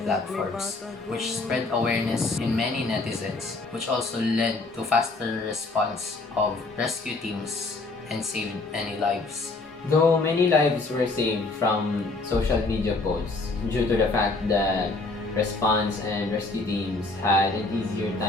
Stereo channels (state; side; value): quieter; right; 3.4 dB